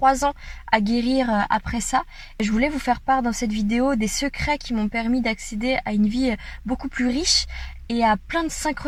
ans à guérir après ça. Je voulais vous faire part dans cette vidéo des secrets qui m'ont permis d'accéder à une vie beaucoup plus riche et à plein de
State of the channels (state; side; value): identical; both; correlation 1.00